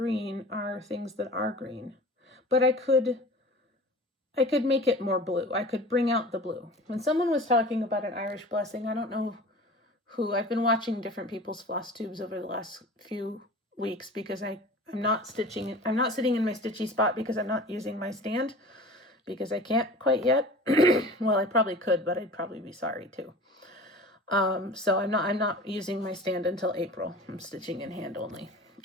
are things that are green. But I could make it more blue. I could bring out the blue. When someone was talking about an Irish blessing, I don't know who, I've been watching different people's Flosstubes over the last few weeks because I'm not sitting in my stitchy spot because I'm not using my stand, because I can't quite yet. Well, I probably could, but I'd probably be sorry too. So I'm not using my stand until April. I'm stitching in hand only,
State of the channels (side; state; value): both; normal; correlation 0.39